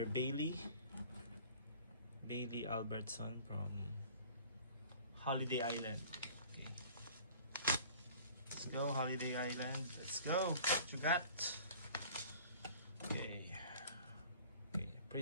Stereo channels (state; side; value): inverted; both; correlation -0.47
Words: Bailey Albertson from Holiday Island. Okay. Let's go, Holiday Island. Let's go. What you got? Okay. Okay,